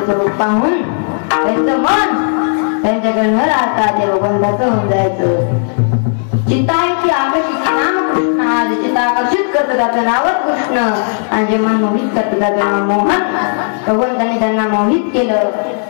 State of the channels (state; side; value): silent; right; 69 dB below the other